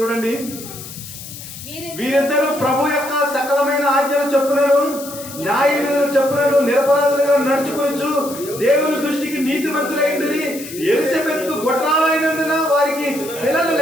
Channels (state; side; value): noise; left; hiss, 13 dB below the sound